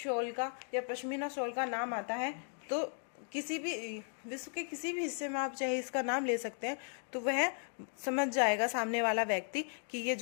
का या पश्मीना शॉल का नाम आता है, तो किसी भी विश्व के किसी भी हिस्से में आप चाहे इसका नाम ले सकते हैं, तो वह समझ जाएगा सामने वाला व्यक्ति कि ये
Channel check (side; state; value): right; silent; 54 dB below the other